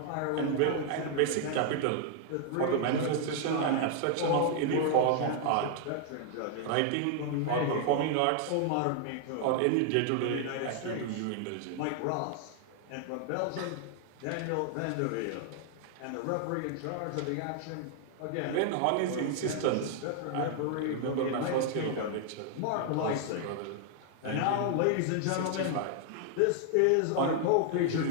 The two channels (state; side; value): different; both; correlation 0.00